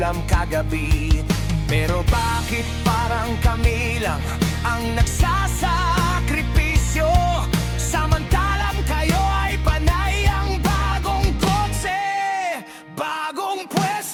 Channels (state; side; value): identical; both; correlation 1.00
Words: kagabi. Pero bakit parang kami lang ang nagsasakripisyo, samantalang kayo ay panay ang bagong kotse, bagong